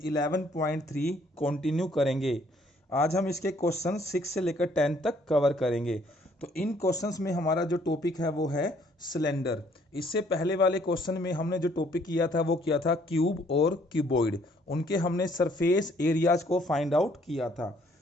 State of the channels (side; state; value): both; normal; correlation 0.64